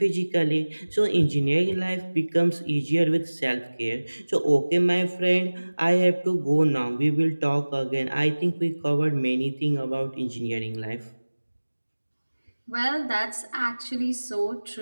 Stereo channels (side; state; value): both; inverted; correlation -1.00